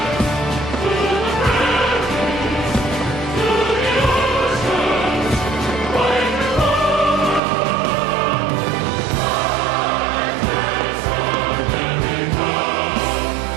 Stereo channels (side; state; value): left; drops out; at 7.4 s